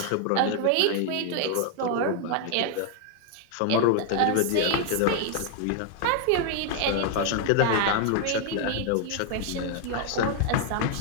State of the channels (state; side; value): different; both; correlation 0.00